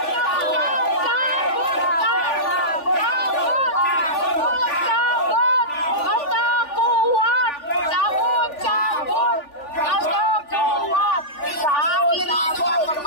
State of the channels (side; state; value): right; late; 3.4 ms